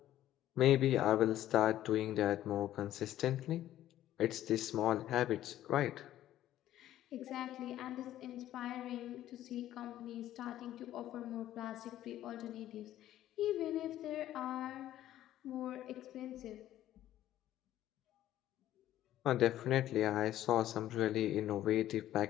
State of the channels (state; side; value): quieter; right; 13.0 dB